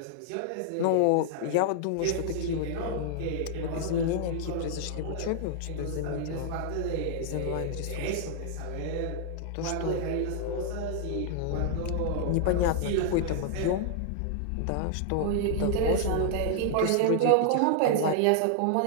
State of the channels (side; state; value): both; different; correlation -0.01